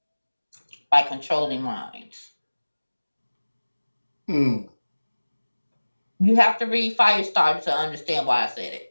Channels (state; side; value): inverted; both; correlation -1.00